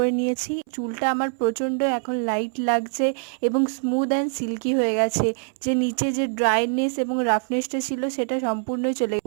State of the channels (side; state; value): left; silent; 63 dB below the other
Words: নিয়েছি। চুলটা আমার প্রচণ্ড এখন লাইট লাগছে এবং স্মুথ অ্যান্ড সিল্কি হয়ে গেছে। যে নিচে যে ড্রাইনেস এবং রাফনেসটা ছিল সেটা সম্পূর্ণই চলে